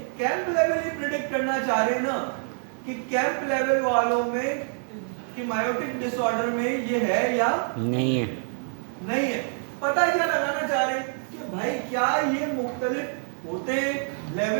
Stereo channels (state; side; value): silent; left; 61 dB below the other